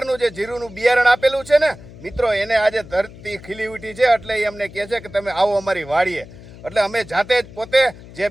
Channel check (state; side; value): noise; left; hum, 18 dB below the sound